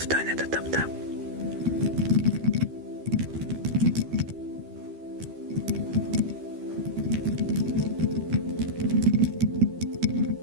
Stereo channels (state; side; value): late; left; 13 ms